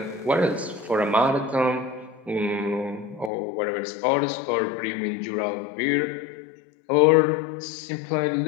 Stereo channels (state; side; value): drops out; right; at 3.3 s